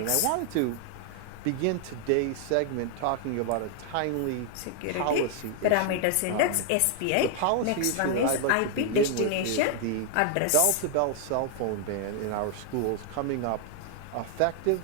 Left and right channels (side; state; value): both; different; correlation 0.00